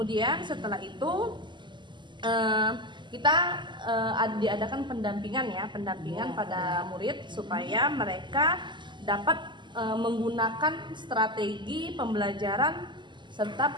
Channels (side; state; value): left; late; 0.22 ms